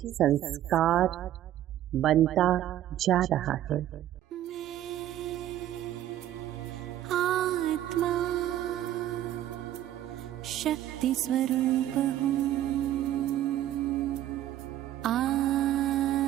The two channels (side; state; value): left; quieter; 12.5 dB